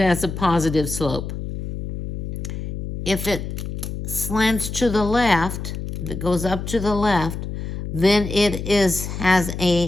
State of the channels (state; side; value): noise; left; hum, 6 dB below the sound